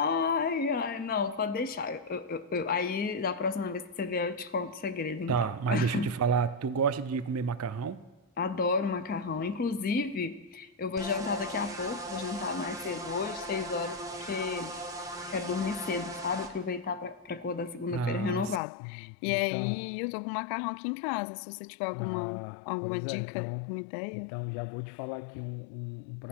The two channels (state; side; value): drops out; right; at 18.6 s